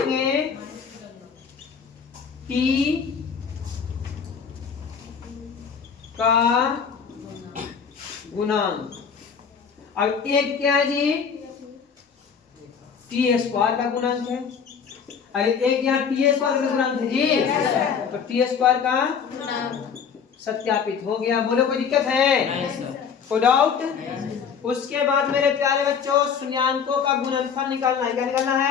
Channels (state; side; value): quieter; right; 6.7 dB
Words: t का गुणांक। अब एक क्या है जी? टी स्क्वायर का गुणांक है। अरे एक यहाँ टी स्क्वायर का गुणांक है जी, तो टी स्क्वायर का सत्यापित हो गया। बोलो कोई दिक्कत है? कोई डाउट? उसके बाद मेरे प्यारे बच्चों शून्यांकों का गुणनफल निकालना है। क्या निकालना